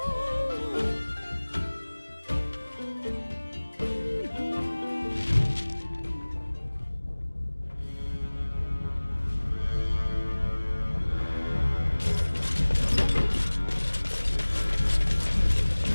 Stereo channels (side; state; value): both; inverted; correlation -1.00